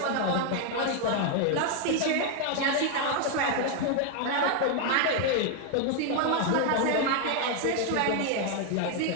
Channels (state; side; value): different; both; correlation 0.01